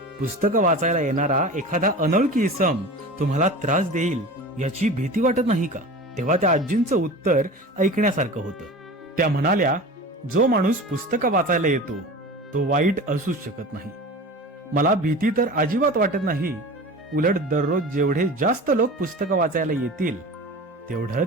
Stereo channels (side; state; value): both; normal; correlation 0.34